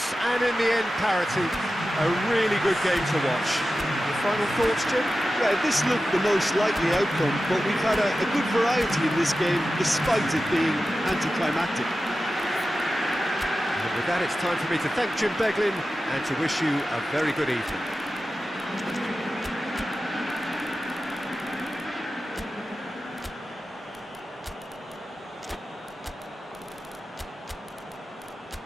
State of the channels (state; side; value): normal; both; correlation 0.93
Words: and in the end, parity. A really good game to watch. Your final thoughts, Jim? Yeah, this looked the most likely outcome, but we've had a good variety in this game, despite it being anticlimactic. And with that, it's time for me to thank Jim Beglin and to wish you a very good evening.